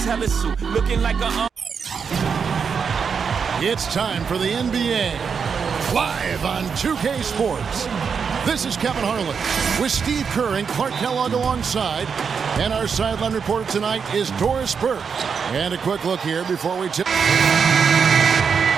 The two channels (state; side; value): quieter; left; 6.2 dB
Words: looking like a. It's time for the NBA, live on 2K Sports. This is Kevin Harlan with Steve Kerr and Clark Kellogg alongside. And our sideline reporter tonight is Doris Burke. And a quick look here before we tip.